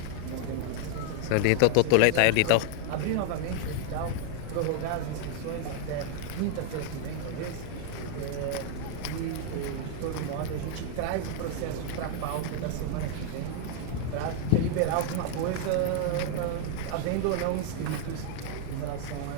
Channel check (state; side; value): different; both; correlation 0.00